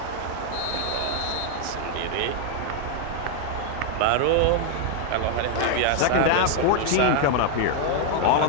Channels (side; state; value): both; different; correlation 0.00